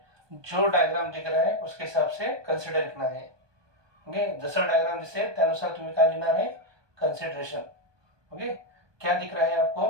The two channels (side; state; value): left; late; 1.2 ms